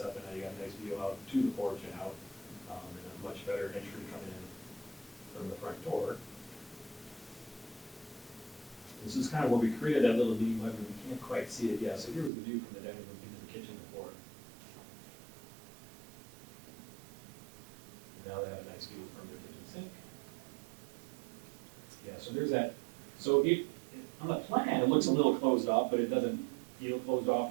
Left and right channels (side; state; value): left; drops out; at 12.3 s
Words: and now you got a nice view out to the porch and out, and a much better entry coming in from the front door. This is kind of where we created that little meeting room. We can't quite see it yet. So here was the view from the dining room into the kitchen before. Now they have a nice view from their kitchen sink. Yeah, so there's that. So on the plan, it looks a little closed off, but it doesn't feel closed off